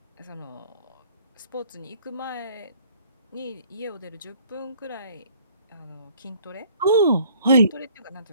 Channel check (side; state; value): both; inverted; correlation -0.56